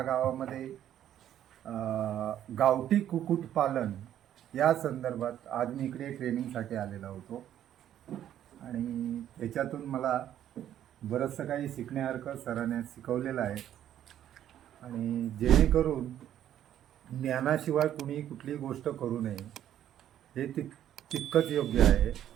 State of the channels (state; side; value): quieter; left; 11.1 dB